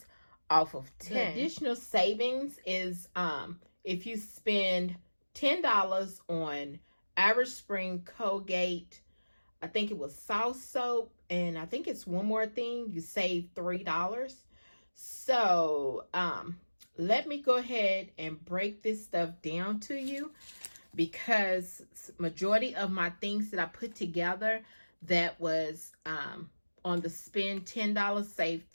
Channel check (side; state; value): both; inverted; correlation -1.00